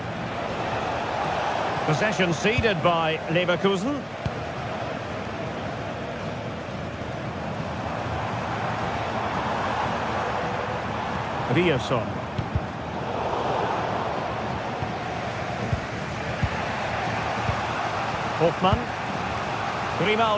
Possession ceded by Leverkusen. Ryerson. Hoffmann.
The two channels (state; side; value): identical; both; correlation 1.00